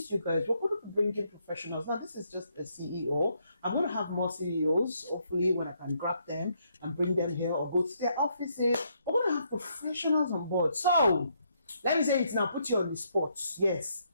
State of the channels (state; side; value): inverted; both; correlation -0.74